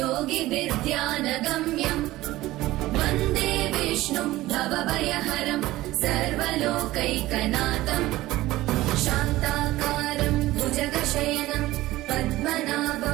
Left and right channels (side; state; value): left; quieter; 17.2 dB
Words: वन्दे विष्णुम् भवभयहरम् सर्वलोकैकनाथम् शान्ताकारम् भुजगशयनम्